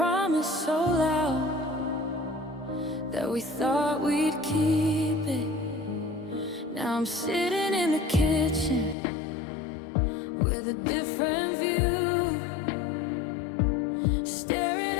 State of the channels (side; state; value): right; drops out; at 9.0 s